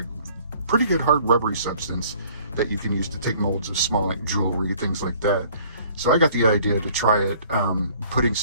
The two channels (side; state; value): both; inverted; correlation -0.55